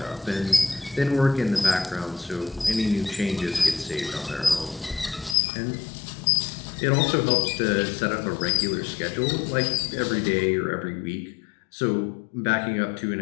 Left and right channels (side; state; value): right; drops out; at 5.4 s